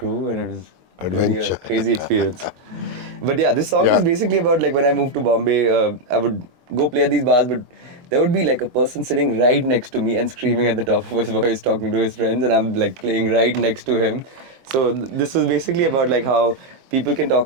and it was really a Adventure. crazy experience. But yeah, this song Yeah. is basically about, like, when I moved to Bombay, I would go play at these bars, but there would be like a person sitting right next to me and screaming at the top of his voice, talking to his friends, and I'm like playing right next to him. So this was basically about like how people can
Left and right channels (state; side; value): late; left; 23 ms